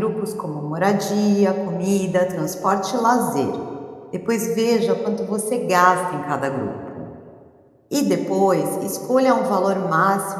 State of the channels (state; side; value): identical; both; correlation 1.00